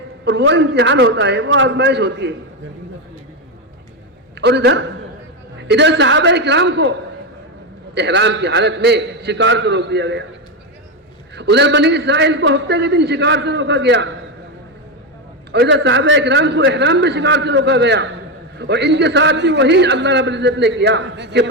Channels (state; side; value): normal; both; correlation 0.10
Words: اور وہ امتحان ہوتا ہے، وہ آزمائش ہوتی ہے. اور ادھر صحابہ کرام کو احرام کی حالت میں شکار سے روک دیا گیا. ادھر بنی اسرائیل کو ہفتے کے دن شکار سے روکا گیا، اور ادھر صحابہ کرام کو احرام میں شکار سے روکا گیا. اور ان کے ساتھ بھی وہی اللہ رب العزت نے کیا کہ